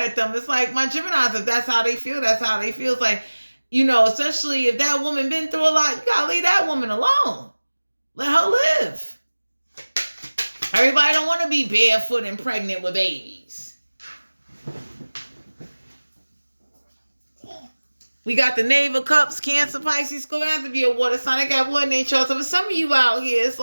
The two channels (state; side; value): inverted; both; correlation -1.00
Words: at them. It's like my Geminis, if that's how they feel, that's how they feel. It's like, especially if that woman been through a lot, you gotta leave that woman alone. Let her live. Everybody don't want to be barefoot and pregnant with babies. We got the Knave of Cups, Cancer, Pisces, going to have to be a water sign. I got water in their chart. So for some of you out here, it's